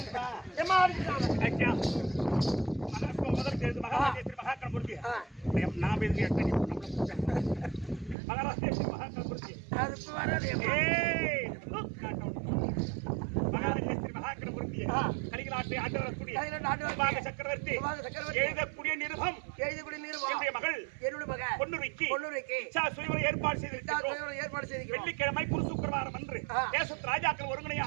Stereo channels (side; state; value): left; drops out; at 8.2 s